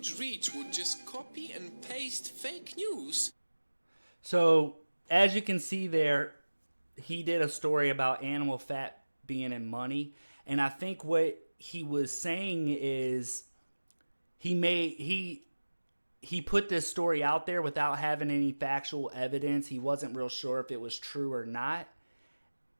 reach would just copy and paste fake news. So, as you can see there, he did a story about animal fat being in money. And I think what he was saying is he put this story out there without having any factual evidence. He wasn't real sure if it was true or not.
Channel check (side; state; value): both; inverted; correlation -1.00